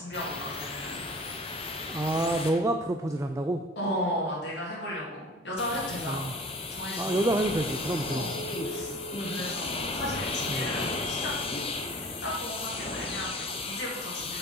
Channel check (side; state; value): both; normal; correlation 0.43